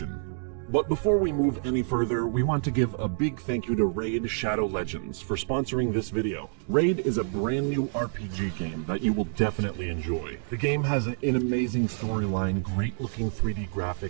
But before we move any further, we want to give a big thank you to Raid Shadow Legends for sponsoring this video. Raid is a brand new RPG game that you will definitely enjoy. The game has an amazing storyline, great looking 3D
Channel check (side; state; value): left; silent; digital silence